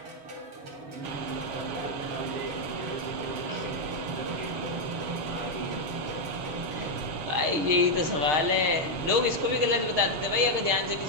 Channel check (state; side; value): late; left; 6.6 ms